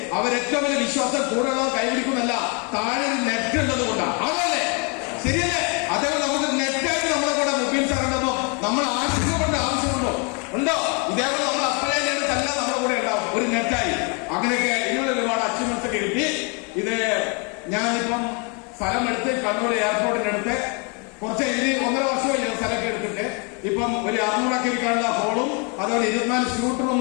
അവരേറ്റവും വലിയ വിശ്വാസം കൂടുതലുള്ളവർ കൈപിടിക്കുന്നല്ല, താഴെ നെറ്റ് ഉള്ളത് കൊണ്ടാണ്. അതല്ലേ ശരിയല്ലേ? അതേപോലെ നമുക്ക് നെറ്റായിട്ട് നമ്മളെ കൂടെ മുബീൻ സാർ ഉണ്ടോ, നമ്മൾ ആശങ്കപ്പെടേണ്ട ആവശ്യമുണ്ടോ? ഉണ്ടോ? ഇതേപോലെ നമ്മൾ അപ്ലൈ എല്ലാം നമ്മുടെ കൂടെ ഉണ്ടാവും, ഒരു നെറ്റായി. അങ്ങനെയൊക്കെ ഇതിനുള്ള ഒരുപാട് അച്ചീവ്മെന്റ്സ് ഒക്കെ കിട്ടി. ഇത് ഞാനിപ്പം സ്ഥലം എടുത്ത് കണ്ണൂർ എയർപോർട്ടിന്റെ അടുത്ത് കുറച്ച് 1.5 വർഷമായി സ്ഥലമൊക്കെ എടുത്തിട്ട് ഇപ്പം ഒരു 600 ഇരിക്കാനുള്ള ഹോളും അതുപോലെ 24 സ്യൂട്ട്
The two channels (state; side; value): quieter; right; 34.7 dB